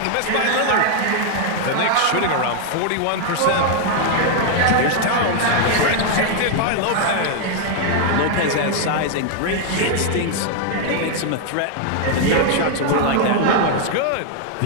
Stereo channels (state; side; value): different; both; correlation 0.00